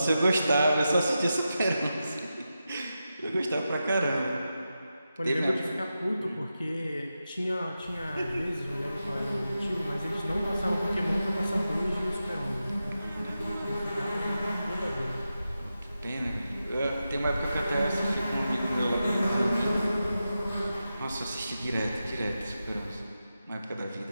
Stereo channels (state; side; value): inverted; both; correlation -0.90